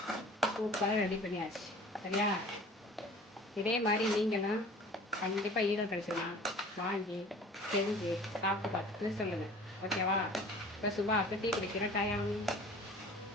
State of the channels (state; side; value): normal; both; correlation 0.45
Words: சூப்பராக ரெடி பண்ணியாச்சு. சரியா? இதே மாதிரி நீங்களும் கண்டிப்பாக ஈரம் கழிச்சுலாம் வாங்கி செஞ்சு சாப்பிட்டு பார்த்துட்டு சொல்லுங்கள். ஓகேவா? இப்போ சுபாவுக்கு டீ குடிக்கிற டைம்.